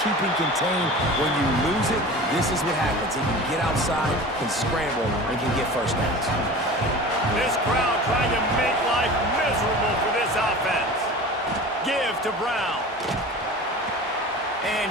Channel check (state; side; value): normal; both; correlation 0.37